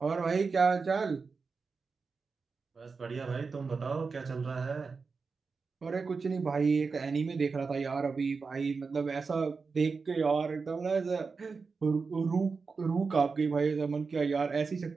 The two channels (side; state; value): left; quieter; 4.7 dB